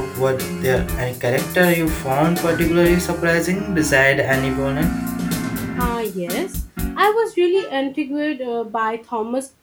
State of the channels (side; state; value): both; identical; correlation 1.00